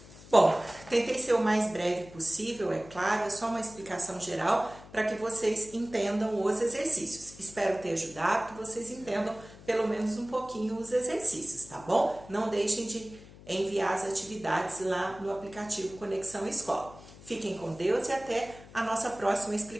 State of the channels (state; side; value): noise; left; hum, 19 dB below the sound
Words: Bom, tentei ser o mais breve possível, é claro, é só uma explicação geral para que vocês entendam os exercícios. Espero ter ajudado, que vocês entendam pelo menos um pouquinho os exercícios, tá bom? Não deixem de enviar as atividades lá no aplicativo Conexão Escola. Fiquem com Deus e até a nossa próxima